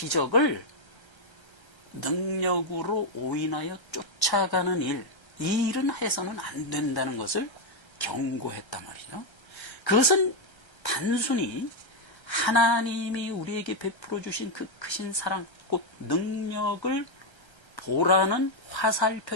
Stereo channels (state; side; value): late; right; 1.3 ms